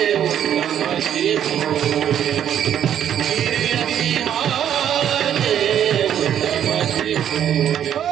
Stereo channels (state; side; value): quieter; left; 9.9 dB